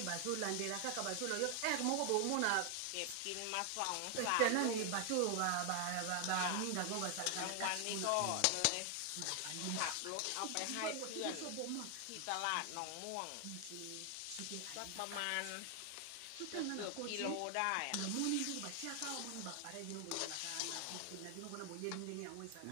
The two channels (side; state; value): both; different; correlation 0.00